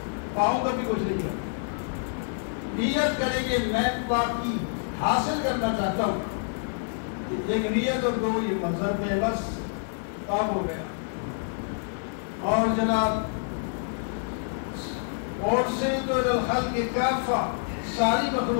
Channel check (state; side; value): silent; right; 60 dB below the other